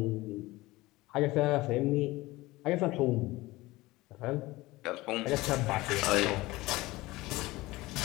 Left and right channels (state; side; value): quieter; right; 19.8 dB